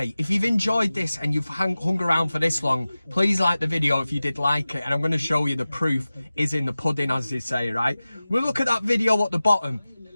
if you've enjoyed this and you've hung around for this long, please like the video if you did like it. And I'm going to show you the proof is in the pudding, as they say, right? We'll look at that video at the bottom.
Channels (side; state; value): both; inverted; correlation -0.97